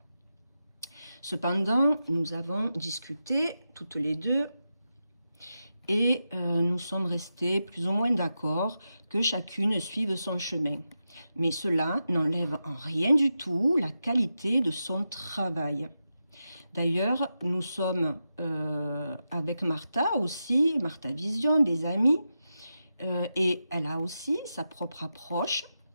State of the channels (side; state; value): both; inverted; correlation -0.89